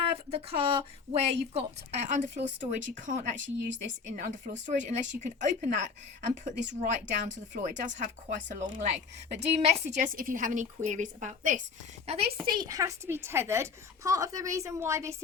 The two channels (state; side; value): quieter; right; 5.3 dB